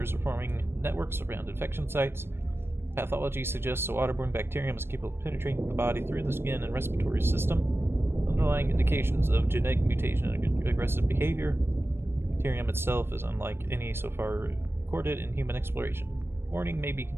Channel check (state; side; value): late; left; 0.11 ms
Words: are forming networks around infection sites. Pathology suggests a waterborne bacterium is capable of penetrating the body through the skin and respiratory system. Underlying indications of genetic mutation and aggressive behavior. The bacterium itself is unlike any so far recorded in human exploration. Warning: may be